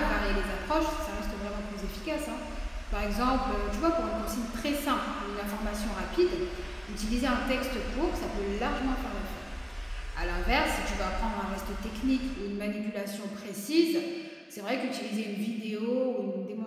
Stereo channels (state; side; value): identical; both; correlation 1.00